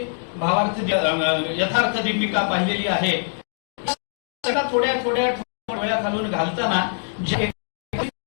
भावार्थ यथार्थ दीपिका पाहिलेली आहे. थोड्या थोड्या वेळा घालून घालताना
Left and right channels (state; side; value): silent; right; digital silence